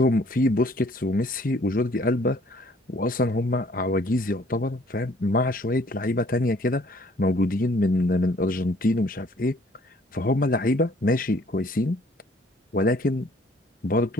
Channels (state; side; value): normal; both; correlation 0.59